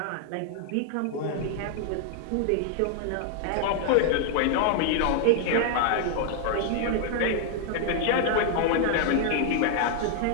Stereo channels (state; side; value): different; both; correlation 0.00